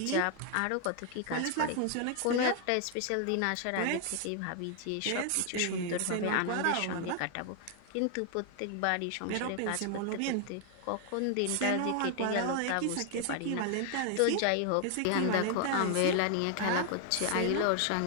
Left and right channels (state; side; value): different; both; correlation 0.00